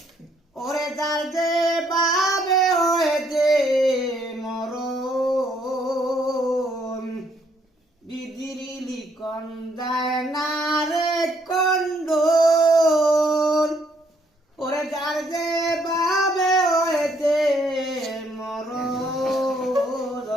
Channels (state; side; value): normal; both; correlation 0.69